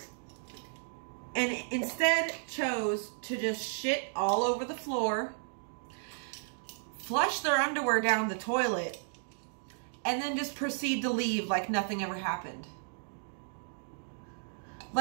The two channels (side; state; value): left; silent; digital silence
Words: and instead chose to just shit all over the floor, flush their underwear down the toilet, and then just proceed to leave like nothing ever happened.